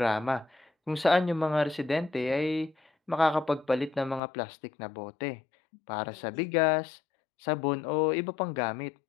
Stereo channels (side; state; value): right; drops out; at 4.2 s